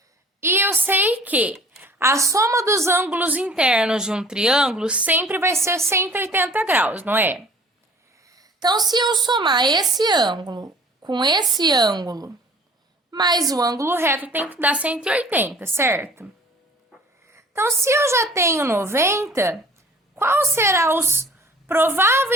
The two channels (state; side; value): normal; both; correlation 0.50